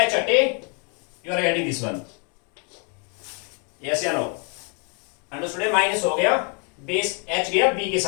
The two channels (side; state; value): right; quieter; 37.4 dB